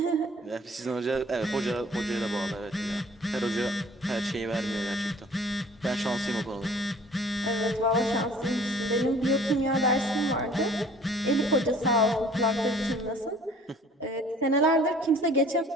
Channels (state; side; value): normal; both; correlation 0.51